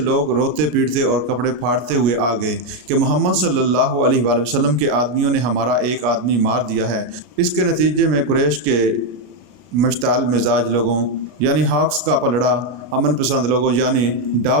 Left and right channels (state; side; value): late; left; 33 ms